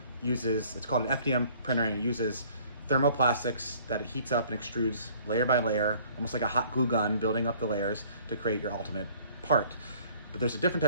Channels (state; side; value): inverted; both; correlation -0.55